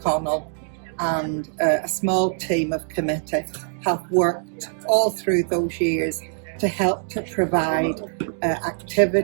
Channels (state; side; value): silent; left; digital silence